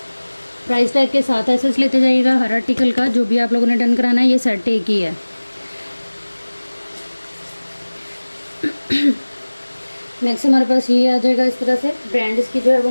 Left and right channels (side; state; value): both; inverted; correlation -1.00